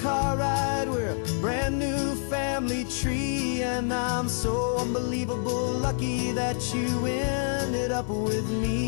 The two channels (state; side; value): silent; right; 56 dB below the other